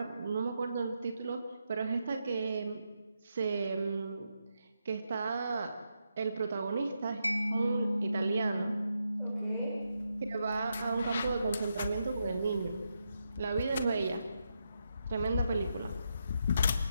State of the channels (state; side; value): inverted; both; correlation -0.83